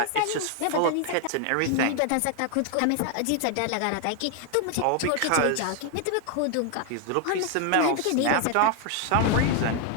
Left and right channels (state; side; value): different; both; correlation 0.00